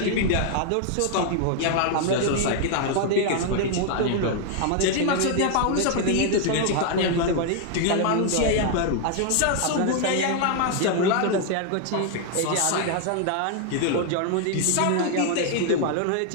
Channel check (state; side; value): different; both; correlation 0.00